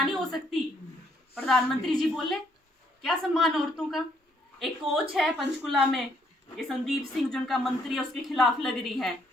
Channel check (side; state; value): both; normal; correlation 0.69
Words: नहीं हो सकती। प्रधानमंत्री जी बोले क्या सम्मान औरतों का? एक कोच है पंचकुला में, ये संदीप सिंह जो उनका मंत्री है, उसके खिलाफ लग रही है,